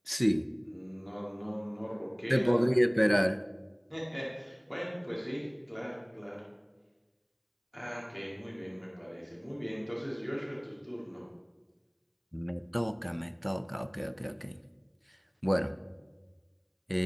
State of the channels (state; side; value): identical; both; correlation 1.00